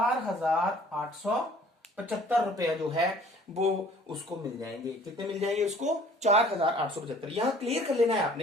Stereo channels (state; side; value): normal; both; correlation 0.53